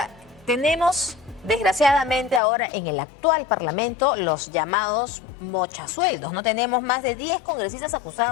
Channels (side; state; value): right; drops out; at 2.4 s